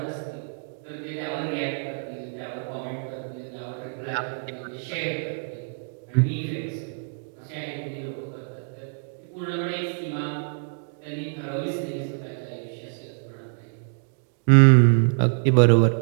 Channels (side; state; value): left; silent; digital silence